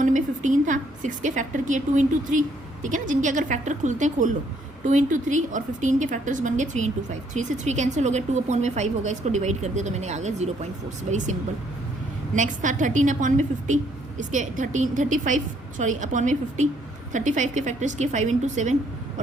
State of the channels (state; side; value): normal; both; correlation 0.67